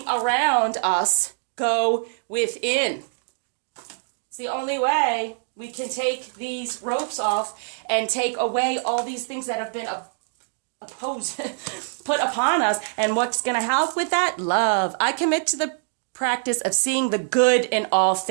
us, go within. It's the only way we can take these ropes off and take away all these things that have been put upon us. And what's going to help with that? Love. I commit to the practice of seeing the good in all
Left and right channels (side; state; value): left; silent; digital silence